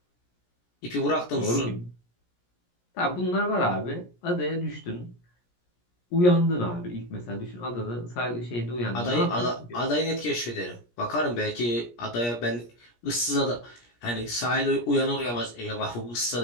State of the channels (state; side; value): late; right; 17 ms